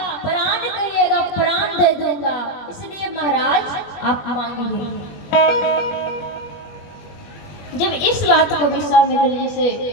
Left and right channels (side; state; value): right; late; 21 ms